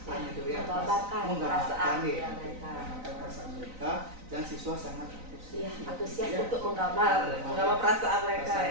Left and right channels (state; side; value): late; left; 3.9 ms